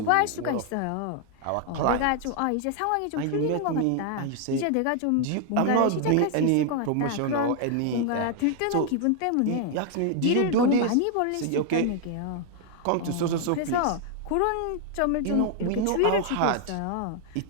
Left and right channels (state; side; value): different; both; correlation 0.00